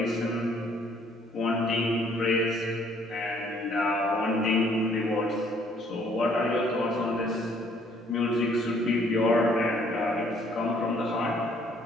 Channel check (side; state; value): both; normal; correlation 0.62